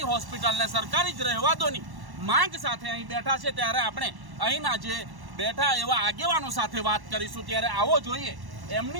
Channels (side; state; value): left; late; 1.1 ms